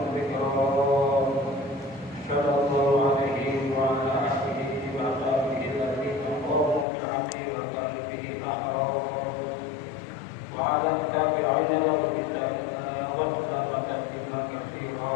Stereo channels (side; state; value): right; drops out; at 6.9 s